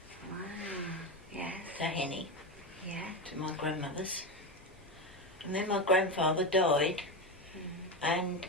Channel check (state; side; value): normal; both; correlation 0.17